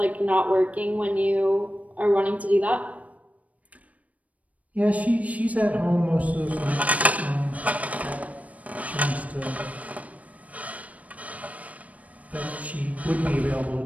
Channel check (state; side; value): late; left; 0.069 ms